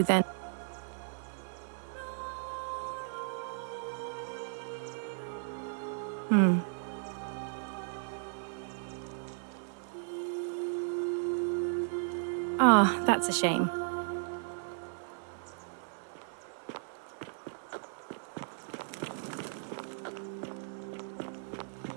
then... Ah, that's a shame.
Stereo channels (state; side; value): silent; left; 54 dB below the other